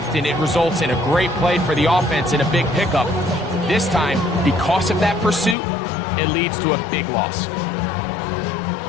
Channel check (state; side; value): drops out; right; at 5.6 s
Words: it results in a great play for the offense and a big pickup. This time, because of that pursuit, it leads to a big loss.